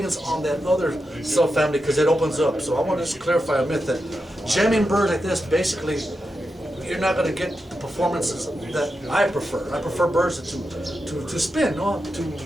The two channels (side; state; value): both; normal; correlation 0.88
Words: on that other subfamily because it opens up. So I want to just clarify a myth that jamming birds like this, basically, you're not going to get the performances that I prefer. I prefer birds to spin, to